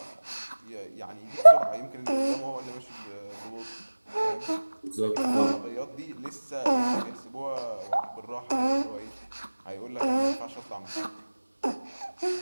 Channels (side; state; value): both; inverted; correlation -1.00